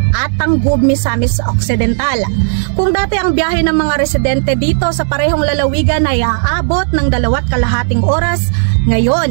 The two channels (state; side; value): silent; left; digital silence